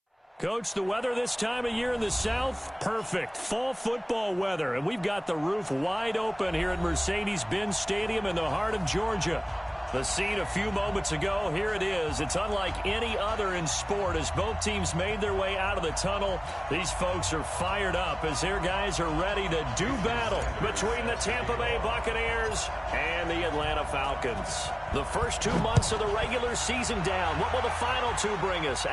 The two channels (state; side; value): identical; both; correlation 1.00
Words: Coach, the weather this time of year in the South, perfect. Fall football weather, and we've got the roof wide open here at Mercedes-Benz Stadium in the heart of Georgia. The scene a few moments ago, here it is. It's unlike any other in sport as both teams made their way out of the tunnel. These folks are fired up as their guys are ready to do battle between the Tampa Bay Buccaneers and the Atlanta Falcons. The first 2 months of the regular season down. What will the final two bring us